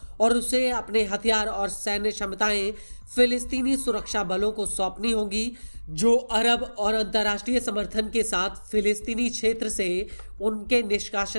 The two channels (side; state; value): both; inverted; correlation -1.00